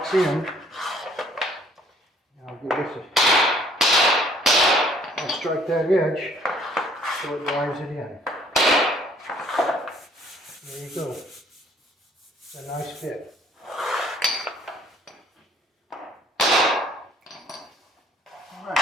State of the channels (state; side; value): normal; both; correlation 0.60